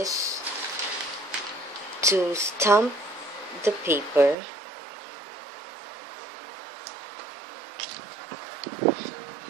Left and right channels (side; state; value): left; drops out; at 4.4 s